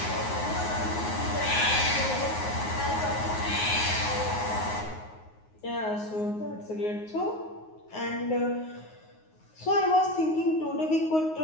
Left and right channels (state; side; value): late; right; 9.5 ms